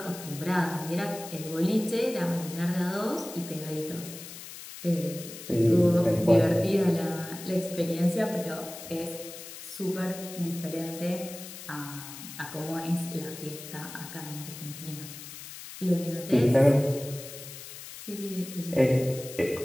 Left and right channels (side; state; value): left; noise; hiss, 13 dB below the sound